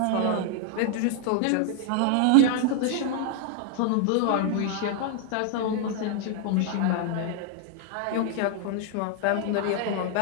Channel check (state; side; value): different; both; correlation 0.00